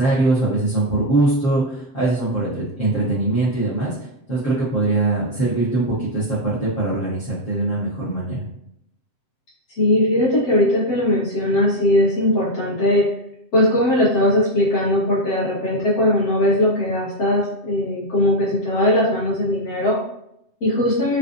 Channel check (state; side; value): late; right; 7.7 ms